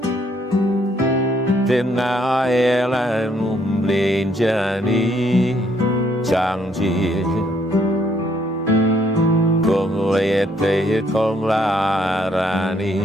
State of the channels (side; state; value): both; normal; correlation 0.69